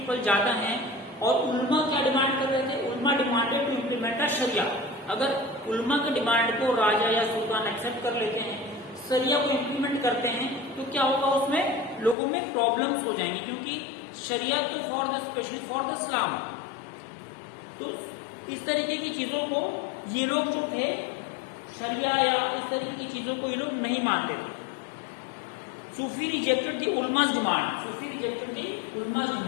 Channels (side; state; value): right; drops out; at 12.2 s